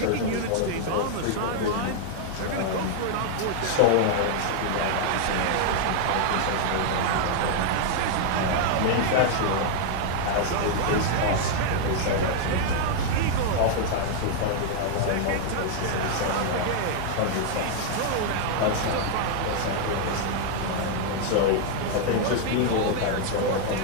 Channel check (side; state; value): both; different; correlation 0.00